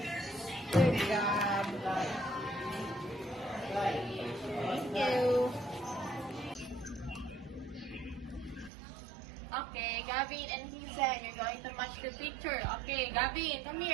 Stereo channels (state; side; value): drops out; left; at 8.7 s